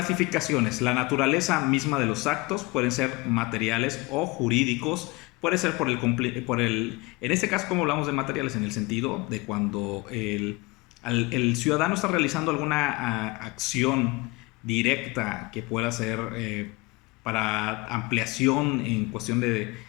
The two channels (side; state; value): right; quieter; 24.0 dB